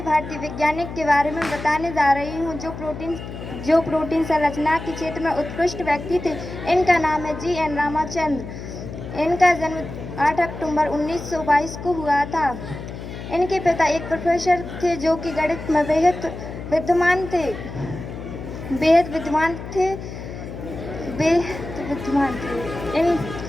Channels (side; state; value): left; noise; hum, 10 dB below the sound